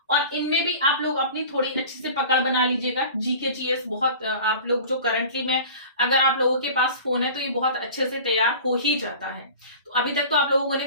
और इनमें भी आप लोग अपनी थोड़ी अच्छी से पकड़ बना लीजिएगा। जीके जीएस बहुत आप लोग जो करंटली में अगर आप लोगों के पास फोन है तो ये बहुत अच्छे से तैयार हो ही जाता है। तो अभी तक तो आप लोगों ने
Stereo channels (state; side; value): inverted; both; correlation -0.40